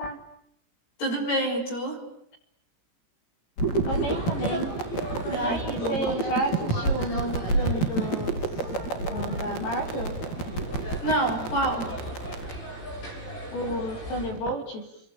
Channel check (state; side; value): late; right; 17 ms